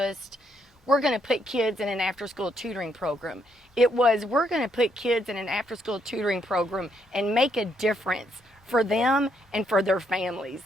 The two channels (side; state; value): both; normal; correlation 0.74